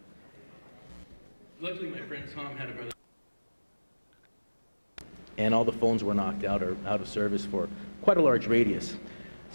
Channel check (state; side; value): inverted; both; correlation -1.00